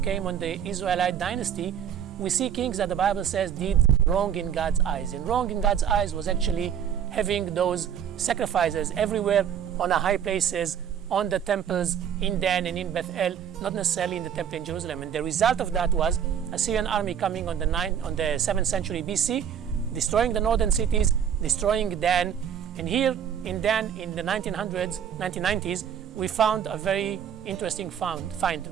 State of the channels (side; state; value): left; quieter; 8.7 dB